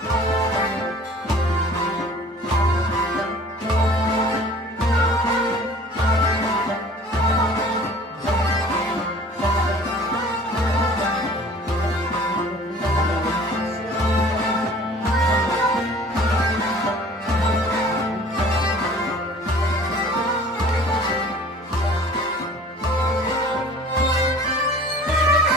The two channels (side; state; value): both; normal; correlation 0.48